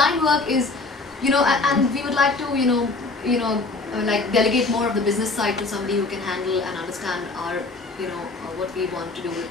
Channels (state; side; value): quieter; right; 3.5 dB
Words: work is, you know, and we would like to, you know, like delegate more of the business side to somebody who can handle and understand our, you know, what we want to do with